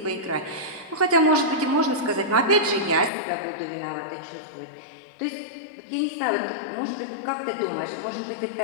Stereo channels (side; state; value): right; drops out; at 3.1 s